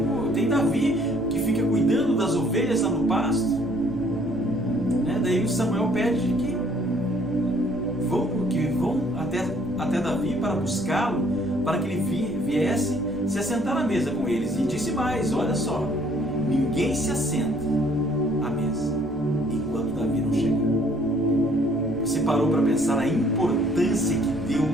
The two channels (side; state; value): both; normal; correlation 0.61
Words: tem Davi que fica cuidando das ovelhas lá no pasto. Daí o Samuel pede que vão até Davi para buscá-lo, para que ele viesse se assentar à mesa com eles. E disse mais: olha só, ninguém se assenta à mesa enquanto Davi não chega. Você parou para pensar a importância que